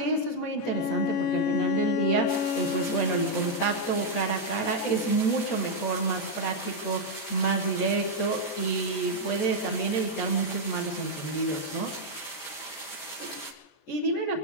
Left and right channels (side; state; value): right; late; 14 ms